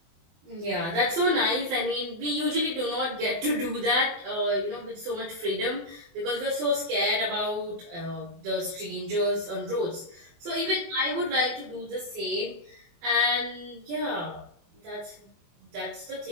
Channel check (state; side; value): late; left; 24 ms